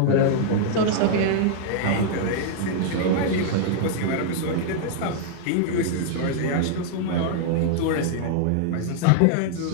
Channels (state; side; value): different; both; correlation -0.01